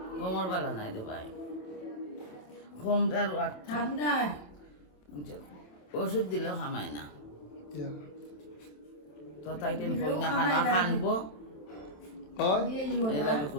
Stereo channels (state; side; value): late; right; 27 ms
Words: খমর বালা নাই রে ভাই খমটার ঠান্ডা ওষুধ দিলেও খামায় না ইয়া তো তাই টেন কই না খানা খানবো হয় এই লাগে